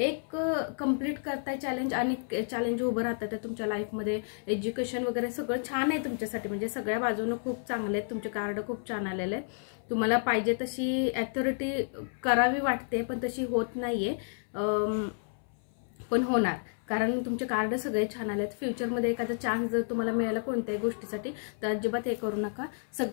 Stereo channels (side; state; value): right; silent; 57 dB below the other